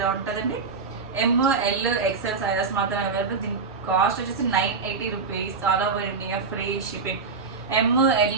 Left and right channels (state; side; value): quieter; left; 4.7 dB